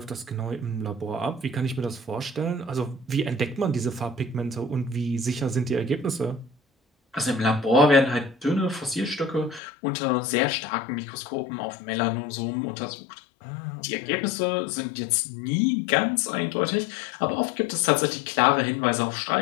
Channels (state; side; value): drops out; right; at 9.6 s